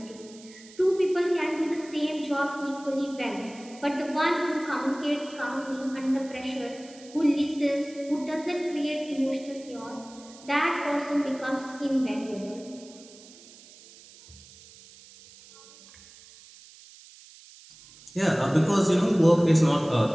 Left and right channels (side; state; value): right; noise; hiss, 21 dB below the sound